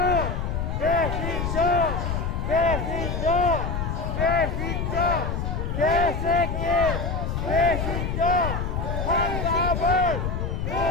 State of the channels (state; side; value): noise; left; rumble, 2 dB below the sound